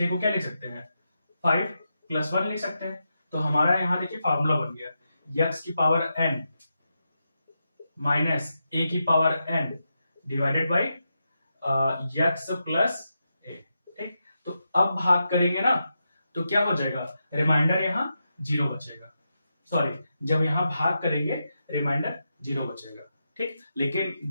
को क्या ले सकते हैं, 5 + 1 ले सकते हैं। तो हमारा यहाँ देखिए फार्मूला बन गया, x की पावर n माइनस a की power n divided by x plus a। ठीक, तो अब भाग करेंगे ना तो क्या हो जाएगा, रिमाइंडर यहाँ 0 बचेगा। सॉरी, जब यहाँ भाग करेंगे रिमाइंडर 0 बचेगा। ठीक, लेकिन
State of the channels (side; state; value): both; inverted; correlation -0.87